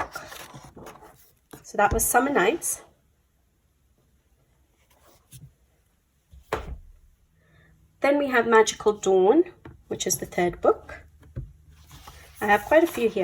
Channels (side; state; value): both; identical; correlation 1.00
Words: So that was Summer Nights. Then we have Magical Dawn, which is the third book. I have quite a few